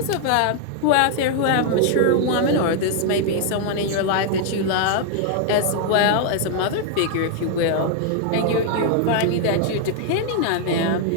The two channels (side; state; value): both; different; correlation 0.00